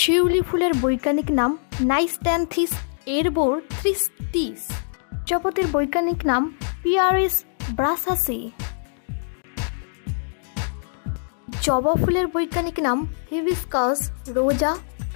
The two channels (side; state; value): right; silent; digital silence